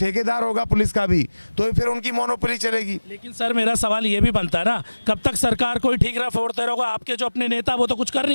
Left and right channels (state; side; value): inverted; both; correlation -1.00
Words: होगा पुलिस का भी, तो फिर उनकी मोनोपोली चलेगी। लेकिन सर मेरा सवाल ये भी बनता है ना, कब तक सरकार कोई ठीक रहा फोड़ते रहोगे? आपके जो अपने नेता वो तो कुछ कर